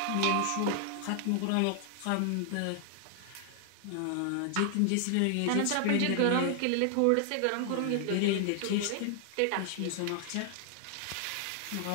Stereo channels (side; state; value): both; different; correlation 0.00